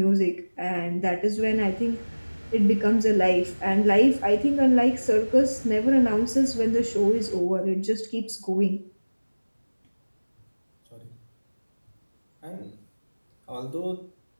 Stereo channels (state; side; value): inverted; both; correlation -1.00